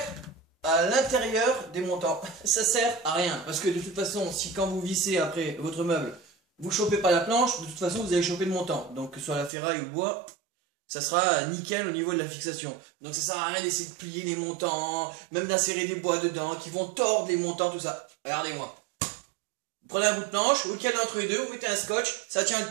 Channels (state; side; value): drops out; left; at 9.5 s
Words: à l'intérieur des montants. Ça sert à rien. Parce que de toute façon, si quand vous vissez après votre meuble, vous chopez pas la planche, de toute façon vous allez choper le montant. Donc que ce soit la ferraille ou le bois, ça sera nickel au niveau de la fixation. Donc ça sert à rien d'essayer de plier les montants, même d'insérer des bois dedans, qui vont tordre les montants, tout ça. Regardez-moi. Vous prenez un bout de planche, vous le calez entre les deux, vous mettez un scotch, ça tient le